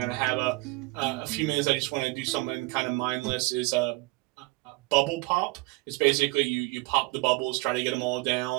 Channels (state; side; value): quieter; left; 23.6 dB